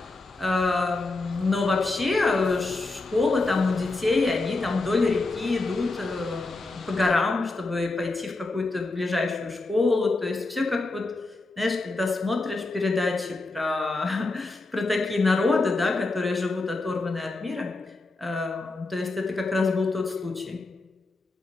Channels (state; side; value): quieter; right; 3.3 dB